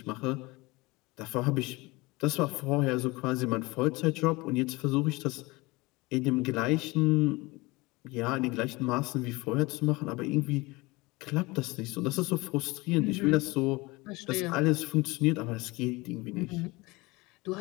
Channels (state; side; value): quieter; right; 23.2 dB